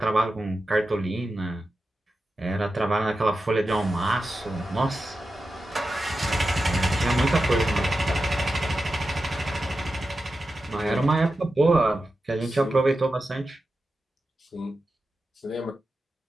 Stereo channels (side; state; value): both; normal; correlation 0.91